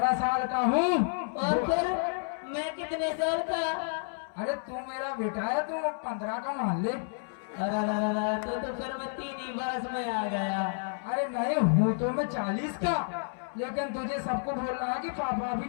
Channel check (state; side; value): silent; right; 58 dB below the other